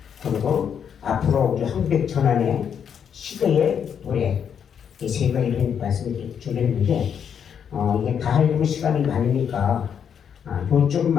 그리고 앞으로 우리 한백 전환의 시대의 노래, 이 세 가지를 말씀을 준비했는데 이게 다 하려면 시간이 많으니까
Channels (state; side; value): quieter; right; 7.9 dB